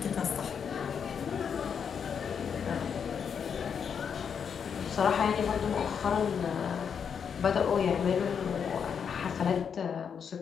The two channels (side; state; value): right; quieter; 7.1 dB